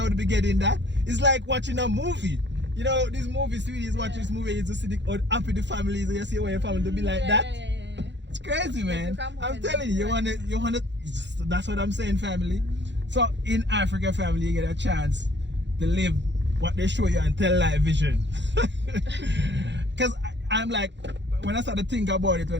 would be getting that. It's like watching a movie. You know, this movie, sweeties, watch this movie, you just see the happy the families, and you see where your family to be like that. It's crazy, man. I'm telling you, you wanna, that's what I'm saying, family. So in Africa, family, you get a chance to live what they show you and tell live vision. Because I'm like, when I start to think about it,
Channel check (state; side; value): late; left; 0.52 ms